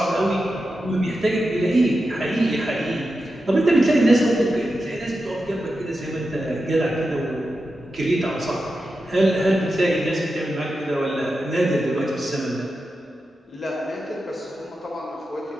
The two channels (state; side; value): normal; both; correlation 0.90